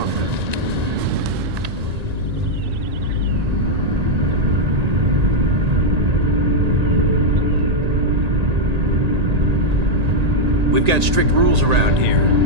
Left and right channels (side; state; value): left; late; 1.8 ms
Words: We've got strict rules around here,